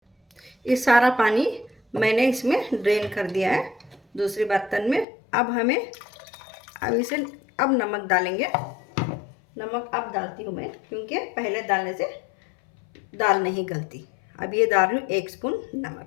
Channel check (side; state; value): right; drops out; at 5.1 s